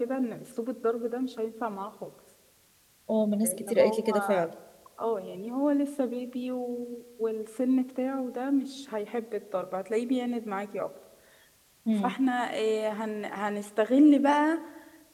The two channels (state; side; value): identical; both; correlation 1.00